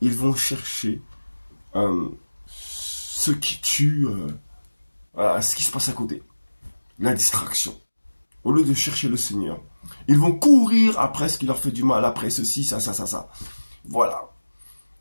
ils vont chercher ce qui tue, voilà, ce qui se passe à côté, la distraction. Au lieu de chercher le Seigneur, ils vont courir après ce qui leur fait du mal, après ceci, ça. Voilà.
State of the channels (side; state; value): both; inverted; correlation -1.00